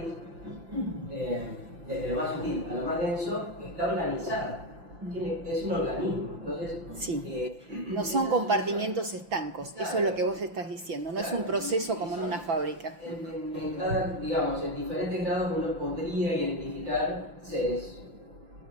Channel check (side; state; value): left; late; 5.8 ms